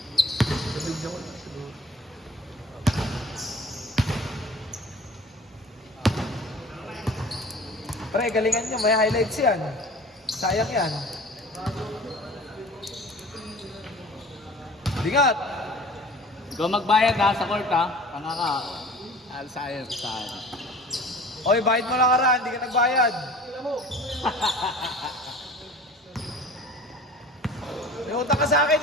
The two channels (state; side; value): normal; both; correlation 0.44